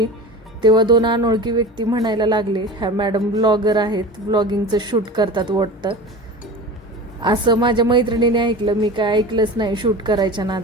तेव्हा 2 अनोळखी व्यक्ती म्हणायला लागले, ह्या मॅडम ब्लॉगर आहेत, ब्लॉगिंगचं शूट करतात वाटतं. असं माझ्या मैत्रिणीने ऐकलं. मी काय ऐकलंच नाही शूट करायच्या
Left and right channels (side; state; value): both; normal; correlation 0.33